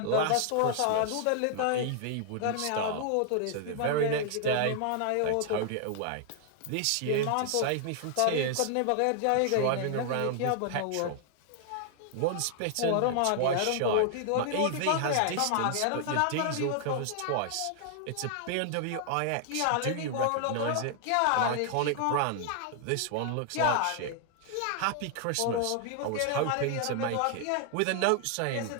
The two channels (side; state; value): both; different; correlation 0.00